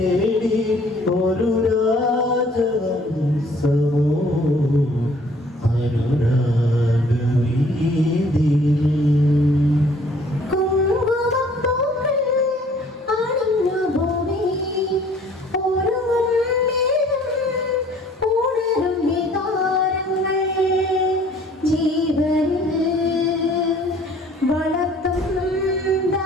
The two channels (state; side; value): normal; both; correlation 0.56